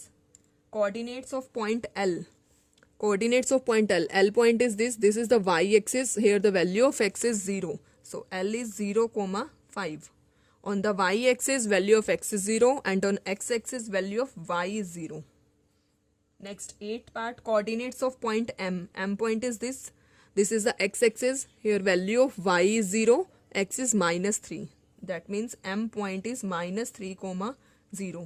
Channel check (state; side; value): identical; both; correlation 1.00